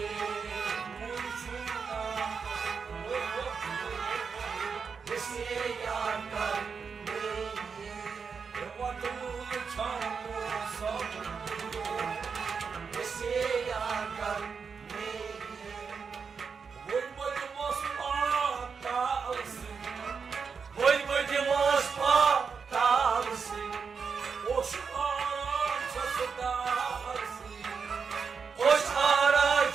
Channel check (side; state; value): left; quieter; 5.7 dB